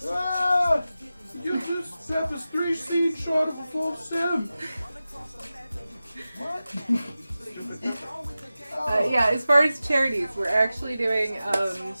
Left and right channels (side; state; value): both; inverted; correlation -0.95